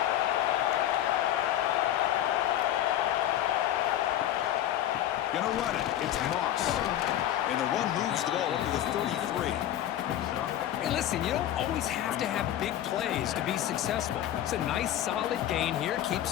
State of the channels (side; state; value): right; quieter; 12.1 dB